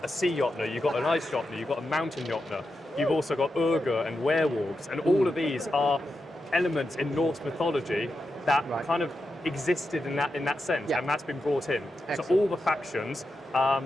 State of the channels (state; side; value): normal; both; correlation 0.88